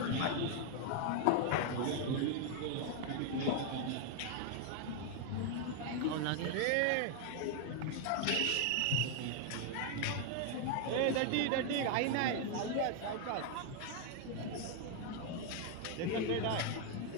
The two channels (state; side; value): different; both; correlation 0.00